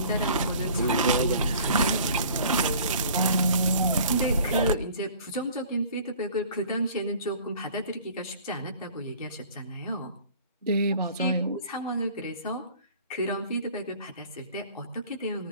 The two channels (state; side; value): inverted; both; correlation -0.49